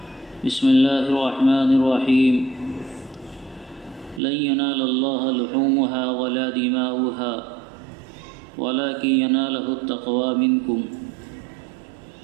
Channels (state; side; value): drops out; left; at 4.2 s